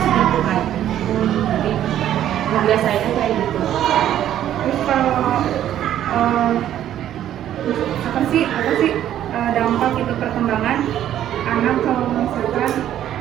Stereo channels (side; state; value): left; quieter; 11.4 dB